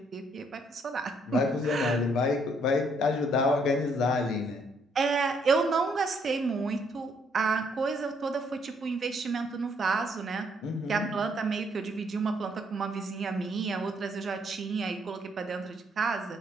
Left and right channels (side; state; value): both; normal; correlation 0.69